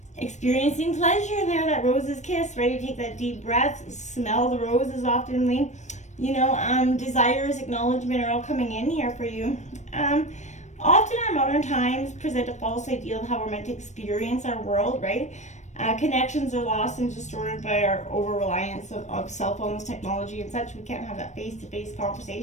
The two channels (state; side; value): late; right; 0.34 ms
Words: Experiencing pleasure there, that rose's kiss. Ready to take that deep breath. Smell the roses oftenly. You know, desires, acknowledgement are all coming in here for you. Often our modern times present a false ideal of how we're meant to experience our world, right? Connections are lost and distorted by our over-reliance of cell phones, technology, and such. We can't have that face-to-face